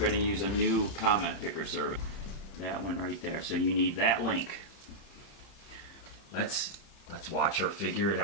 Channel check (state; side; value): late; right; 31 ms